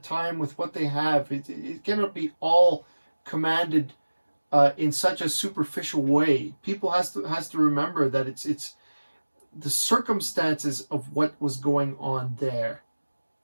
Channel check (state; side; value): inverted; both; correlation -1.00